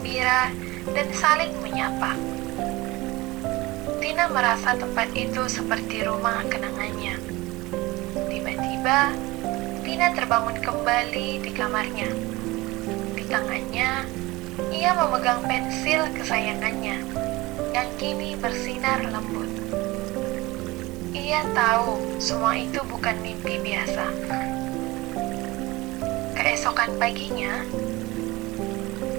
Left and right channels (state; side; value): quieter; left; 21.0 dB